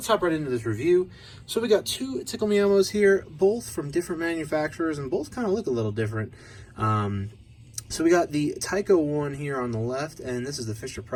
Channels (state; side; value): identical; both; correlation 1.00